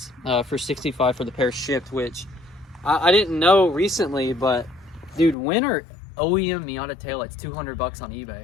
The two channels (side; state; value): right; drops out; at 5.4 s